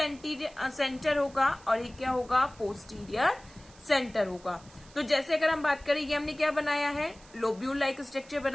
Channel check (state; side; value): noise; right; hiss, 24 dB below the sound